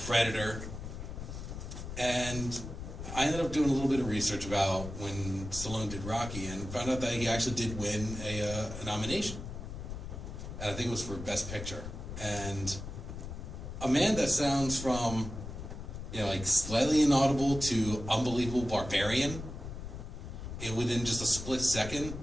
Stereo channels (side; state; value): left; noise; rumble, 8 dB below the sound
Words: Predator. And I ended up doing a little bit of research about when Stallone did Rocky and found out that he actually did win a nomination. And I think it was for Best Picture. And a man that sounds from, you know, like slightly inaudible to unbelievable barbarian, within just a split second,